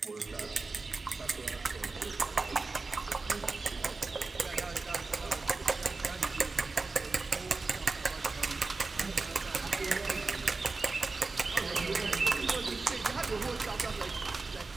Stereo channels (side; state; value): left; quieter; 3.8 dB